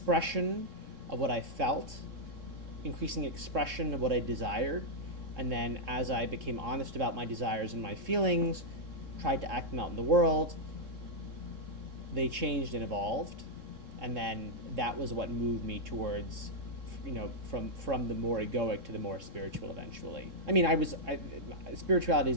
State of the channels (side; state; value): left; late; 3.7 ms